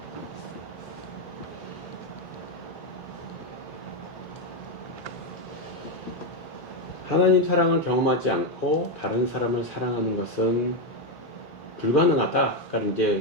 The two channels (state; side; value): normal; both; correlation 0.06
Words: 하나님 사랑을 경험하지 않고 다른 사람을 사랑하는 것은 불가능하다. 그러니까